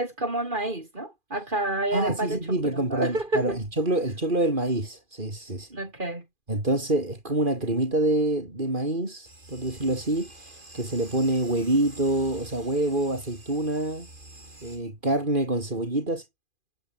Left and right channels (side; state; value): left; late; 2.4 ms